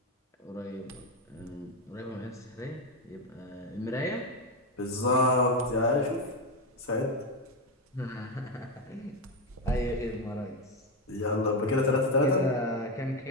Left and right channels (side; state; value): both; normal; correlation 0.10